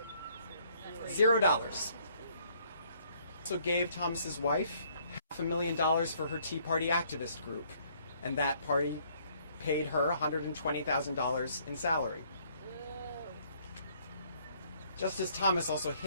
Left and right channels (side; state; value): both; inverted; correlation -0.64